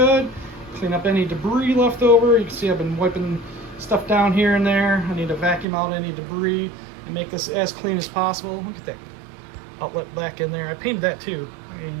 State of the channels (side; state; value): left; drops out; at 5.7 s